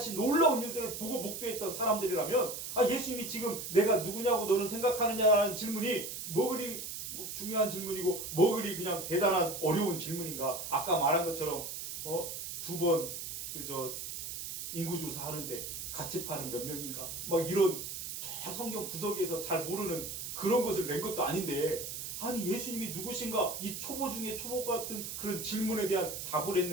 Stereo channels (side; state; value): right; noise; hiss, 6 dB below the sound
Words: 놀라운 일들을 보고 목도했던 사람들이라면 예수님이 지금 내가 누구냐고 너는 생각하느냐라는 질문이 뭐 그리 중요한 질문이고 뭐 그리 그냥 대단한 어려운 질문인가. 아까 말한 것처럼 2번 인구조사 하는데 같이 파는 몇 명인가 이런 저 성경 구석에서 잘 모르는 그런 것을 낸 것도 아닌데 예수님이 누구신가 이 초보 중에 초보 같은 그런 질문에 대한 답을